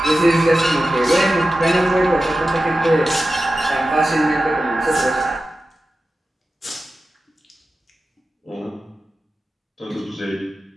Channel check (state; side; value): normal; both; correlation 0.93